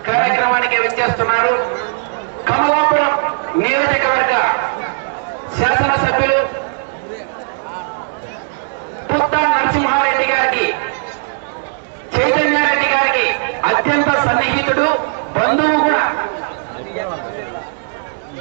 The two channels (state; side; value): silent; left; digital silence